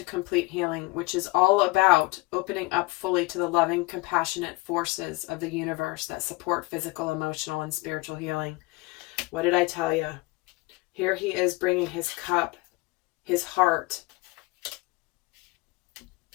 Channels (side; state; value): right; quieter; 23.3 dB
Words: complete healing, which is all about opening up fully to the loving, compassionate forces of the universe that support physical, emotional, and spiritual healing. What did I tell you? Here he is bringing his cup, his heart,